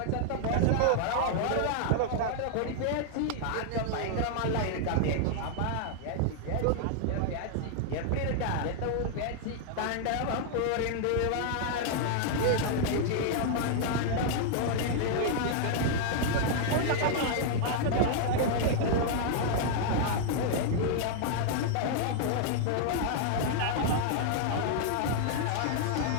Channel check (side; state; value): both; different; correlation -0.01